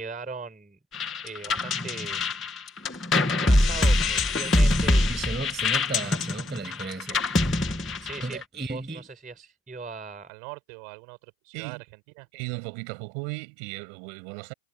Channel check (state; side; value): drops out; left; at 10.3 s